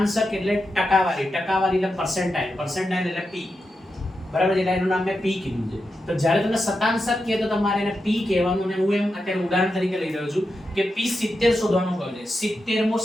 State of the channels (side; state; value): both; normal; correlation 0.88